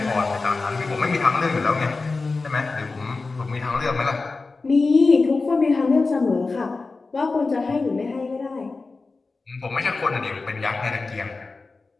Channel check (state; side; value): quieter; right; 3.8 dB